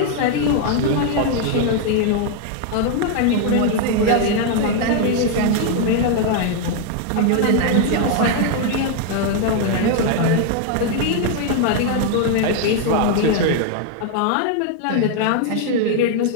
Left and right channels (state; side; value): different; both; correlation 0.00